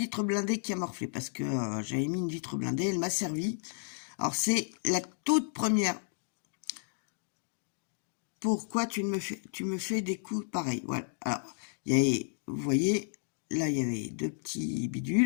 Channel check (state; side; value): silent; right; digital silence